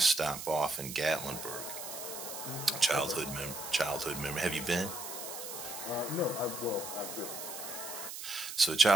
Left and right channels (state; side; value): noise; right; hiss, 8 dB below the sound